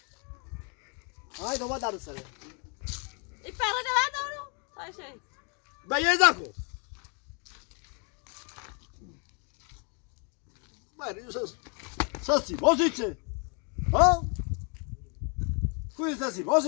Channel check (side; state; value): right; quieter; 36.9 dB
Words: هاي دوما دارو سر يبقى هذا دورو. هاي شيء. بيزاكو ما ساسي بوزيتي ها كويس ساسي